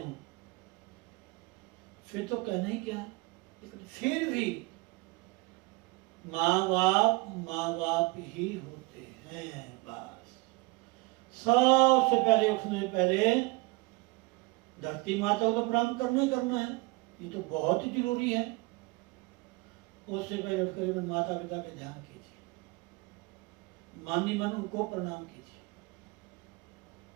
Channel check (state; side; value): quieter; left; 25.1 dB